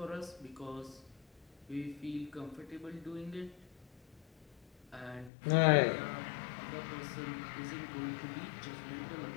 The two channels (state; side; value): drops out; right; at 5.3 s